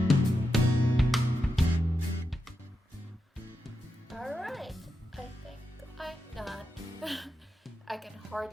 Alright, I think I'm done. I can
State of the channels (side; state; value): both; normal; correlation 0.87